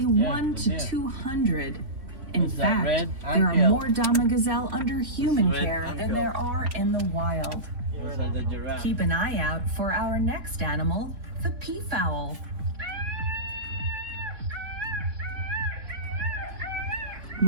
1 to 200. In Is that fact, red? there are Until. more Dhamma Gazelle under human Red care than until. there are in the wild. Those are the giraffe. Keep an eye out for our next animal, the Pea Fowl.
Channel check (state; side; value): late; left; 3.7 ms